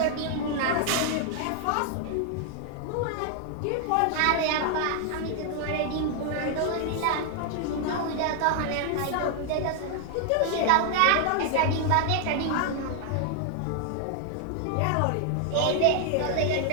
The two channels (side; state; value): both; different; correlation 0.00